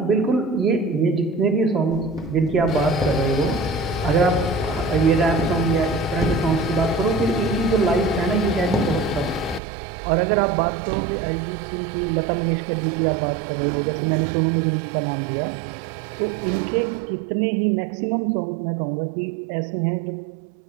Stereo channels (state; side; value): drops out; left; at 9.6 s